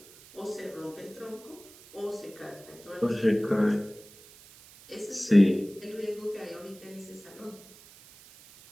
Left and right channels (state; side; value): noise; right; hiss, 22 dB below the sound